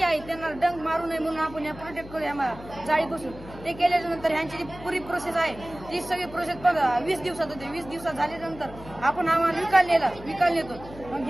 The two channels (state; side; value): noise; left; hum, 16 dB below the sound